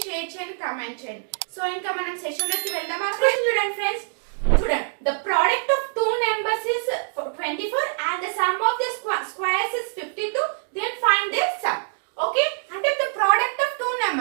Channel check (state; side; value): silent; left; digital silence